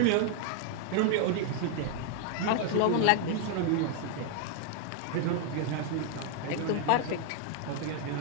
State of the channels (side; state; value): both; different; correlation 0.00